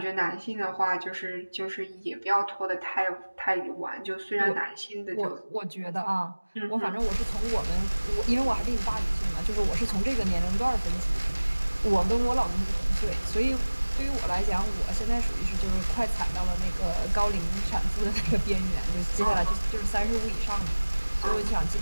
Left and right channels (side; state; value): both; inverted; correlation -1.00